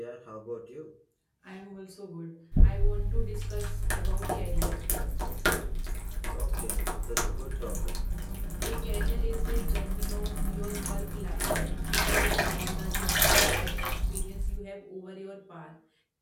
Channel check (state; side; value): identical; both; correlation 1.00